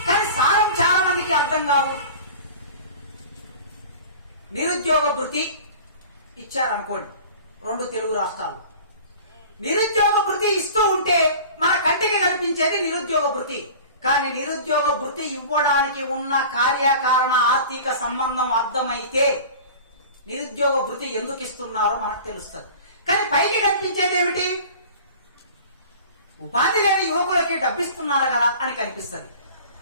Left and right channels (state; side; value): inverted; both; correlation -0.40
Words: కానీ సారం చాలా మందికి అర్థం కాదు. నిరుద్యోగ భృతి ఇచ్చారనుకోండి 2 తెలుగు రాష్ట్రాలు. నిరుద్యోగ భృతి ఇస్తూ ఉంటే మన కంటికి కనిపించేది నిరుద్యోగ భృతి. కానీ నిరుద్యోగ భృతి ఇవ్వడానికి ఉన్న కార్యకారణ ఆర్థిక సంబంధం అర్థమైతే నిరుద్యోగ భృతి ఎందుకు ఇస్తున్నారో మనకు తెలుస్తుంది. కానీ పైకి కనిపించేది ఏమిటి? ఉపాధి లేని యువకులకి డబ్బిస్తున్నారు కదా అని కనిపిస్తుంది.